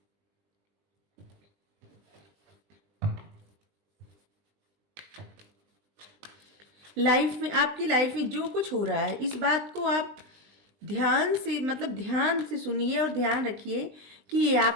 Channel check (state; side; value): late; left; 20 ms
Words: लाइफ में, आपकी लाइफ में जो कुछ हो रहा है, इस बात को आप ध्यान से, मतलब ध्यान से सुनिए और ध्यान रखिए कि ये